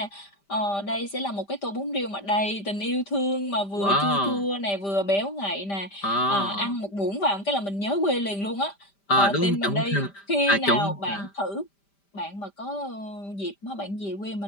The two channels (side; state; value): right; late; 5.1 ms